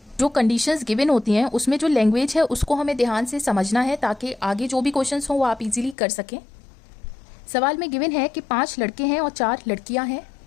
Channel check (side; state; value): right; drops out; at 6.0 s